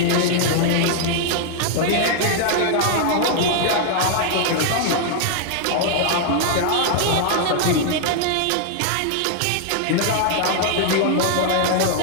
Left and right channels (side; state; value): both; different; correlation 0.00